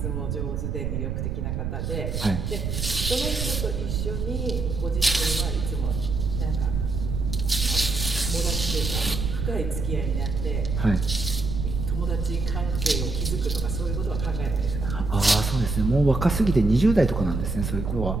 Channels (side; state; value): right; noise; rumble, 2 dB below the sound